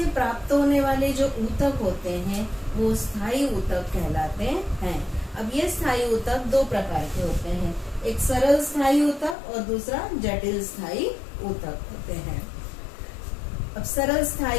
प्राप्त होने वाले जो ऊतक होते हैं वो स्थायी ऊतक कहलाते हैं। अब ये स्थायी ऊतक दो प्रकार के होते हैं, एक सरल स्थायी ऊतक और दूसरा जटिल स्थायी ऊतक होते हैं। अब सरल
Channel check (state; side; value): drops out; right; at 9.3 s